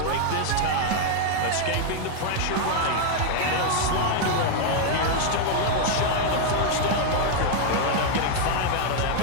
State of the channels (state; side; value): different; both; correlation 0.00